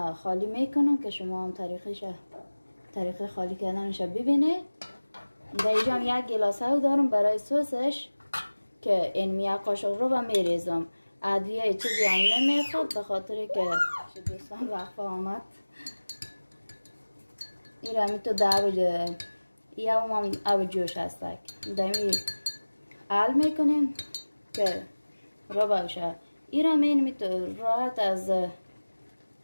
خالی میکنم که شما هم طریق خالی کردنش ببینید. در اینجا هم یک گلاسه دارم برای سسش که این یک قاشق رو با میریزم. ادویه چیزی هم نمیخواد به خاطر که دوستان وقفه آمد. این را می تو یا هم آب جوش هستک دمی حل میکنیم که رو باشه. این را می تو راحت از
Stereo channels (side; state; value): both; inverted; correlation -1.00